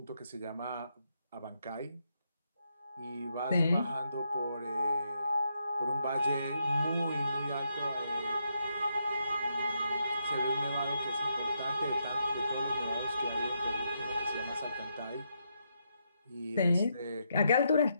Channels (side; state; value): both; inverted; correlation -0.79